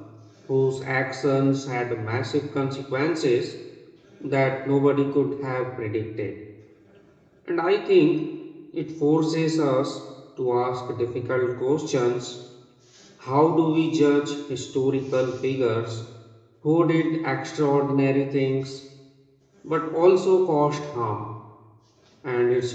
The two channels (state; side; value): identical; both; correlation 1.00